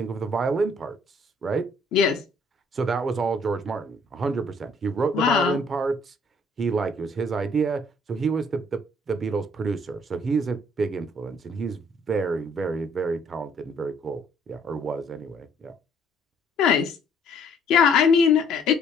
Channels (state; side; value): normal; both; correlation 0.62